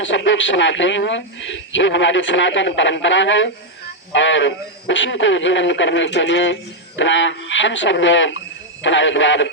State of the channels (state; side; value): normal; both; correlation 0.00